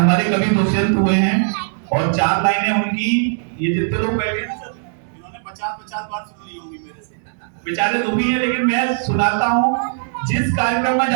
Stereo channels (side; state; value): left; silent; digital silence